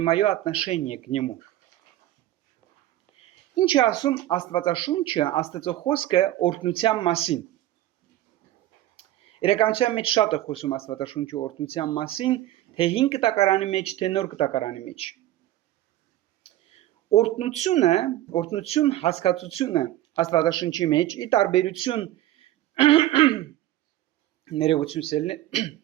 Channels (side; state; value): left; quieter; 14.3 dB